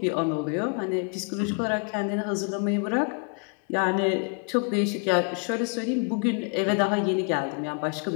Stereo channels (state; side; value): quieter; right; 36.0 dB